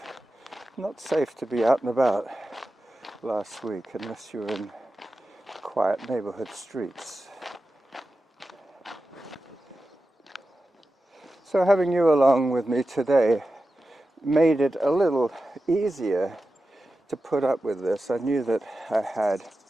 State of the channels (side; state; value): both; normal; correlation 0.92